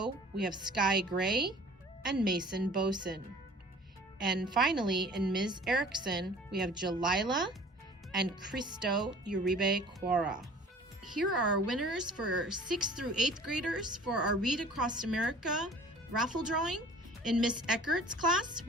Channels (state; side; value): normal; both; correlation 0.47